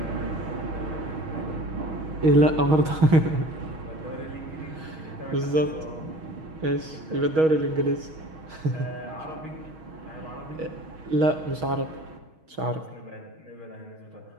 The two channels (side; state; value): left; late; 6.3 ms